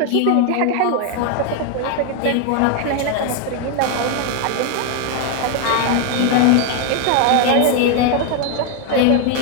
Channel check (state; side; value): different; both; correlation 0.00